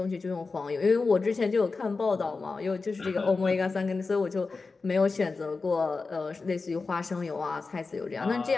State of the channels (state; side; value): quieter; right; 4.1 dB